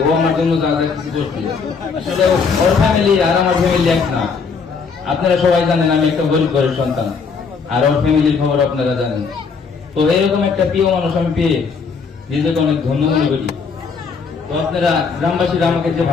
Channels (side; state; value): right; quieter; 5.3 dB